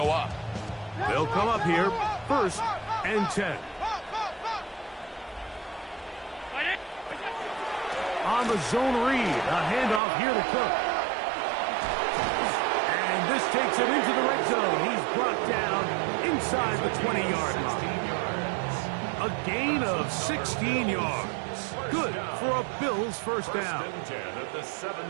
up. They'll come up here, 1st and 10. On the zone read, a handoff here to Cook. And this takes him into the red zone. He's brought down inside the 20-yard line. A gain of 16 yards. Good for a Bills first down. First and 10 at the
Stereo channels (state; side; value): drops out; left; at 10.0 s